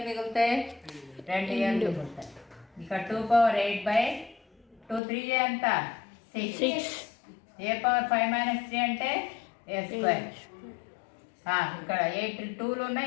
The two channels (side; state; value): right; drops out; at 5.0 s